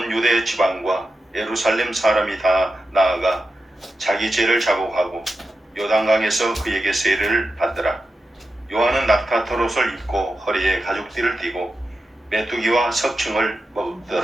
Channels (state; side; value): normal; both; correlation 0.90